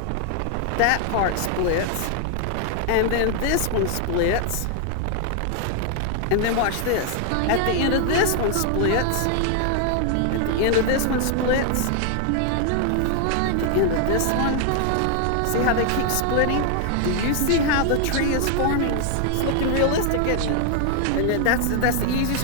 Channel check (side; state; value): both; different; correlation 0.00